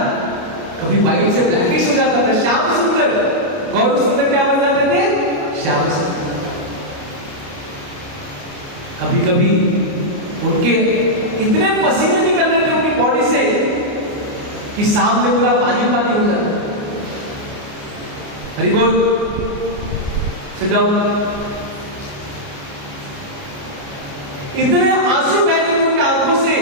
कभी व्हाइट से ब्लैकिश हो जाता था. श्याम सुंदर, गौर सुंदर क्या बन जाते थे? श्याम सुंदर. कभी कभी उनके इतने पसीने निकल रहे थे उनकी बॉडी से कि सामने पूरा पानी पानी हो जाता. हरि बोल. Sit down. इतने आंसू बह रहे उनकी आंखों से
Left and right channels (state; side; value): late; left; 29 ms